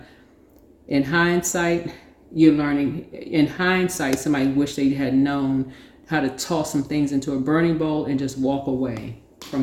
in hindsight, somebody wish they had known how to toss some things into a burning bowl and just walk away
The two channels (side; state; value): both; identical; correlation 1.00